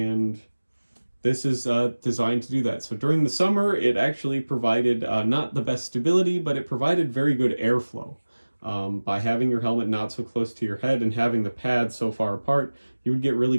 this is designed to do that. So during the summer, it actually provided not the best stability, but it provided very good airflow. By having your helmet not so close to your head and having the pads so far apart, you would get really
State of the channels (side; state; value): both; inverted; correlation -1.00